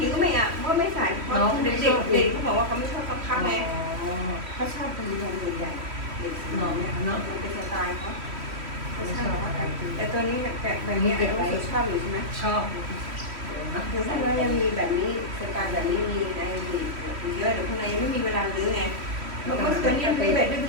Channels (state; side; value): late; left; 3.1 ms